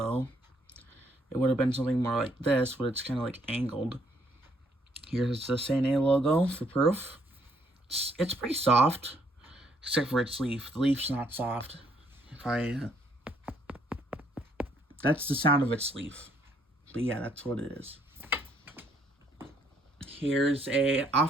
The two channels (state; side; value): normal; both; correlation 0.69